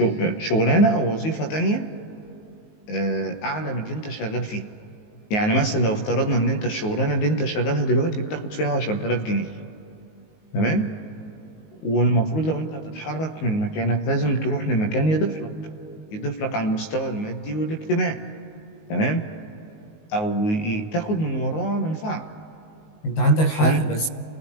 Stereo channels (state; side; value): late; right; 19 ms